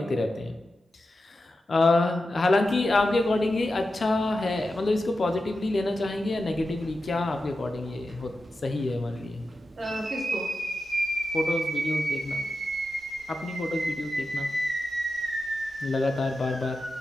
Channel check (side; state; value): both; normal; correlation 0.91